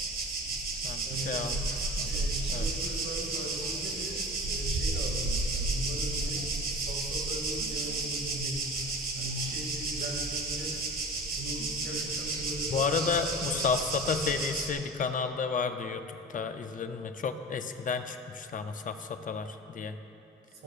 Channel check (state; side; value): normal; both; correlation 0.34